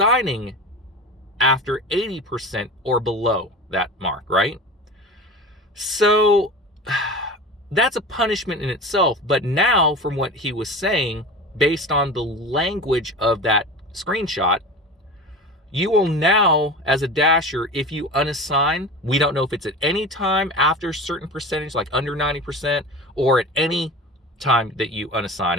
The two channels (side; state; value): both; normal; correlation 0.33